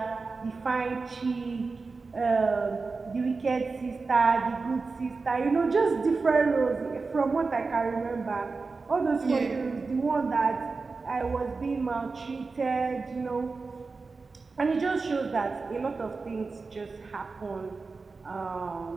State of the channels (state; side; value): quieter; left; 4.2 dB